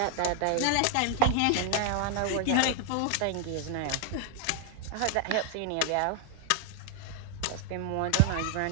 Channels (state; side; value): different; both; correlation 0.00